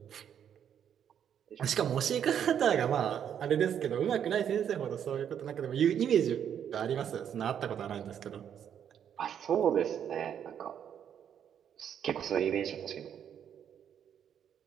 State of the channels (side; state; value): left; quieter; 8.9 dB